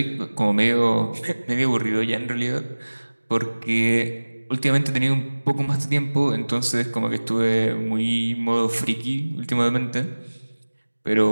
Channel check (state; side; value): inverted; both; correlation -1.00